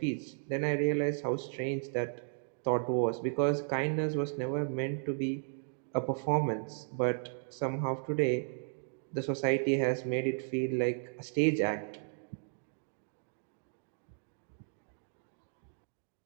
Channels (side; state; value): left; silent; digital silence